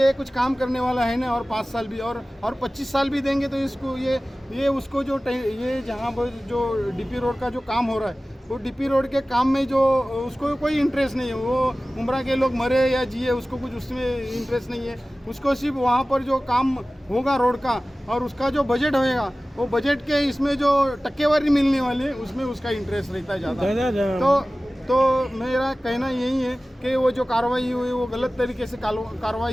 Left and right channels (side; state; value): both; normal; correlation 0.97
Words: कुछ काम करने वाला है ना, और 5 साल भी और 25 साल भी देंगे तो इसको ये उसको जो ये जहाँ पर जो डीपी रोड का जो काम हो रहा है, वो डीपी रोड के काम में जो उसको कोई इंटरेस्ट नहीं है. वो उमरा के लोग मरे या जिए, उसको कुछ उसमें इंटरेस्ट नहीं है. उसको सिर्फ वहाँ पर जो काम होगा रोड का, और उसका जो बजट होएगा, वो बजट के इसमें जो टक्केवारी मिलने वाली है उसमें उसका इंटरेस्ट रहता है ज़्यादा. तो मेरा कहना यही है कि वो जो कार्रवाई हुई वो गलत तरीके से